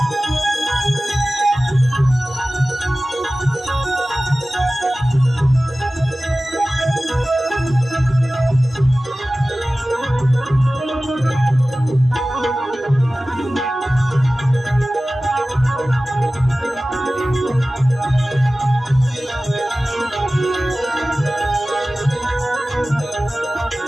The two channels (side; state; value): both; normal; correlation 0.96